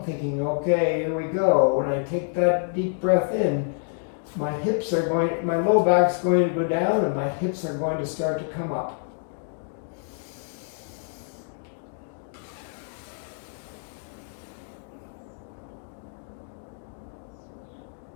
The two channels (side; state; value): right; silent; digital silence